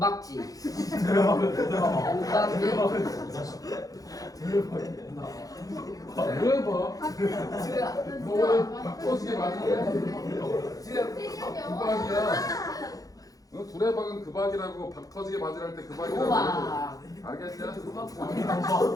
대박. 너 바꿔지게 맞는 그박이야. 너 두레박은 그박이라고 박 터지게 맞으랄 때 그박이라고. 우와. 알겠냐?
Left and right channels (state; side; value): late; right; 0.17 ms